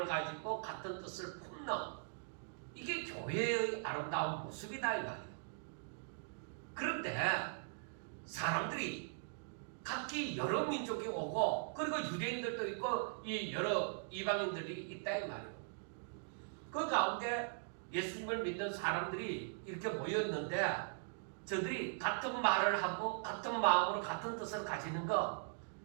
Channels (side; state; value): left; silent; digital silence